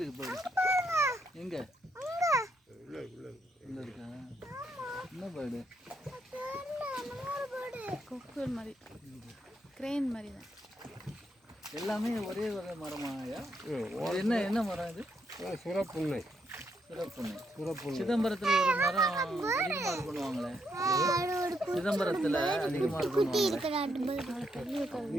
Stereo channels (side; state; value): both; normal; correlation 0.77